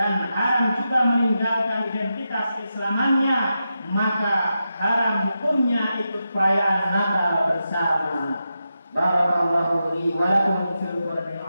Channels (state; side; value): inverted; both; correlation -0.88